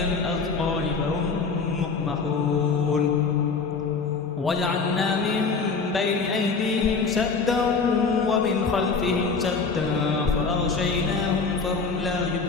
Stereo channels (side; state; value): right; quieter; 4.7 dB